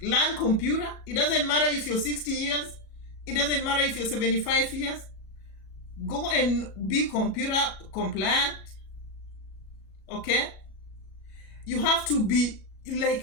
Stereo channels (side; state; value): right; late; 37 ms